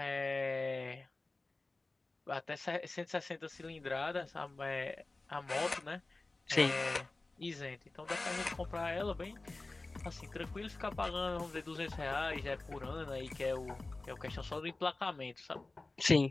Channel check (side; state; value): right; quieter; 3.2 dB